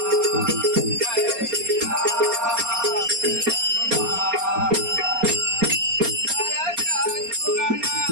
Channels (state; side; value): late; left; 4.3 ms